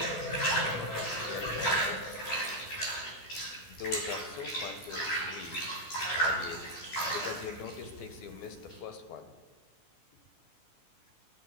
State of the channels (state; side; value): late; right; 13 ms